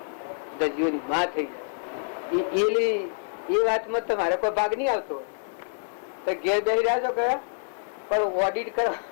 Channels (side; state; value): right; silent; 60 dB below the other